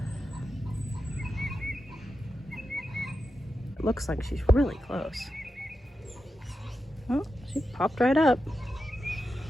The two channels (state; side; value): normal; both; correlation 0.90